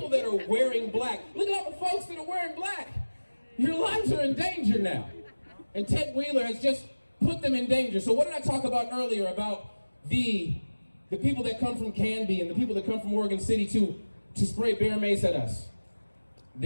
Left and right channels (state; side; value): inverted; both; correlation -1.00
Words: that are wearing black. Look at all the folks that are wearing black. Your lives are in danger now. And Ted Wheeler has just put them in danger. So what did I talk about earlier about the people that come from Canby and the people that come from Oregon City to spray bear mace at us?